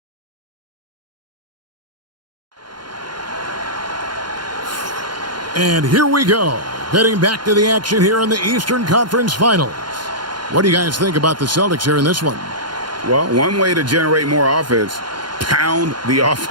And here we go, heading back to the action here in the Eastern Conference Finals. What do you guys think about the Celtics here in this one? Well, one way to generate more offense, pound the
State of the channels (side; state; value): left; late; 0.71 ms